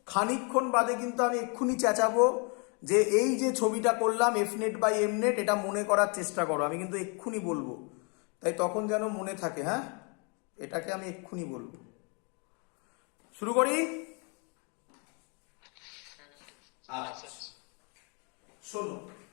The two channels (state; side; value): quieter; right; 35.1 dB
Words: খানিকক্ষণ বাদে কিন্তু আমি এক্ষুনি চেঁচাবো যে এই যে ছবিটা করলাম F net by M net, এটা মনে করার চেষ্টা করো। আমি কিন্তু এক্ষুনি বলবো, তাই তখন যেন মনে থাকে। হ্যাঁ, এটাকে আমি এক্ষুনি বলবো। শুরু করি। আচ্ছা শোনো,